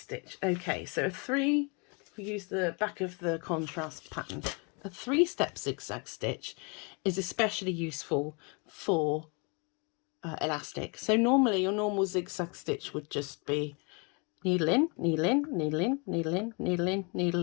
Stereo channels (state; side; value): quieter; right; 33.1 dB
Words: Okay, so we use the back of the contrast pattern. A 3-step zigzag stitch is especially useful for elastic. So normally your normal zigzag stitch would just be needle in, needle in, needle in, needle in, needle in,